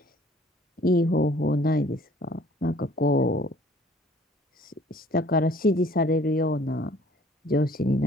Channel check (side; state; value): both; normal; correlation 0.55